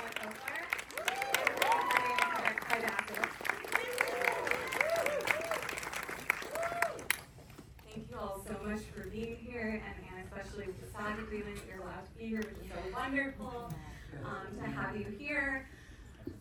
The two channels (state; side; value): identical; both; correlation 1.00